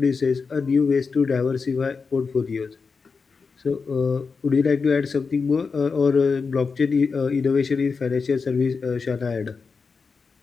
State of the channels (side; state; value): right; quieter; 4.9 dB